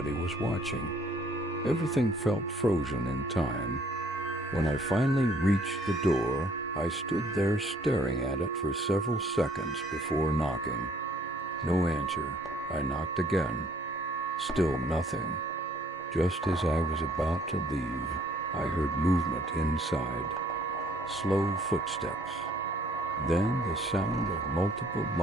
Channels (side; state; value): both; normal; correlation 0.61